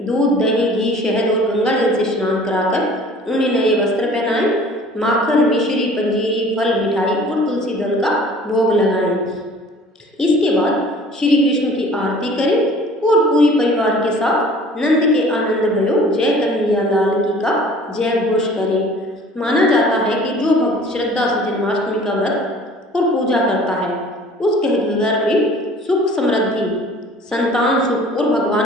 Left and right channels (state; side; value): normal; both; correlation 0.49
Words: दूध, दही, घी, शहद और गंगा जल से स्नान कराकर उन्हें नए वस्त्र पहनाएं। माखन, मिश्री, पंजीरी, फल, मिठाई और तुलसी दल का भोग लगाएं। इसके बाद श्री कृष्ण की आरती करें और पूरी परिवार के साथ नंद के आनंद भयो जय कन्हैया लाल की का जय घोष करें। माना जाता है कि जो भक्त श्रद्धा से जन्माष्टमी का व्रत और पूजा करता है उसके घर में सुख, समृद्धि, संतान सुख और